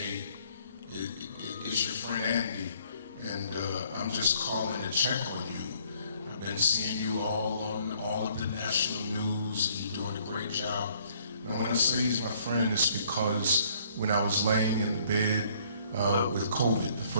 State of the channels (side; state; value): both; inverted; correlation -0.62